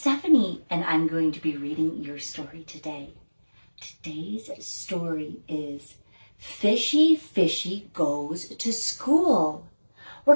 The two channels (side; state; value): both; inverted; correlation -1.00